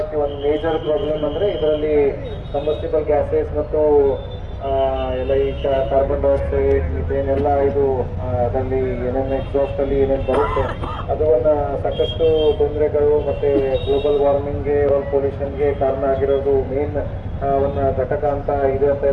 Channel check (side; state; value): both; identical; correlation 1.00